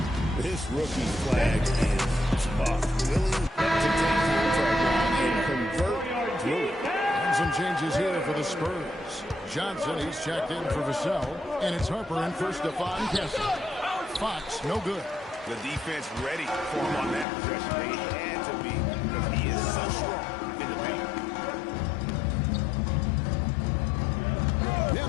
This rookie Flag is tough. Willing to take contact and convert through it. And some changes here for the Spurs. Johnson, he's checked in for Vassell. And it's Harper in for Stephon Kessel. Fox, no good. The defense ready for him on that possession. They had to be because he is so strong in the paint.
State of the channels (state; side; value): drops out; right; at 17.2 s